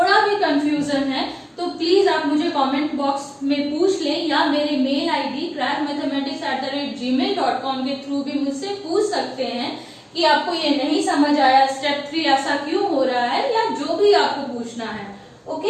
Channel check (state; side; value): identical; both; correlation 1.00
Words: भी कंफ्यूजन है तो प्लीज आप मुझे कमेंट बॉक्स में पूछ लें या मेरे मेल आईडी crackmathematics@gmail.com के थ्रू भी मुझसे पूछ सकते हैं कि आपको ये नहीं समझ आया, स्टेप 3 ऐसा क्यों हो रहा है, या जो भी आपको पूछना है।